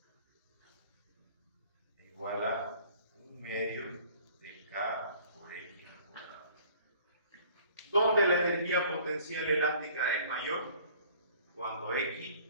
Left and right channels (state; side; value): inverted; both; correlation -0.53